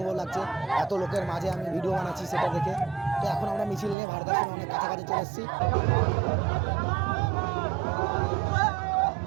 লাগছে। এত লোকের মাঝে আমি ভিডিও বানাচ্ছি সেটা দেখে। তো এখন আমরা মিছিল নিয়ে ভারতাশ্রমে অনেক কাছাকাছি চলে এসেছি।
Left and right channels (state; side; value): drops out; left; at 4.0 s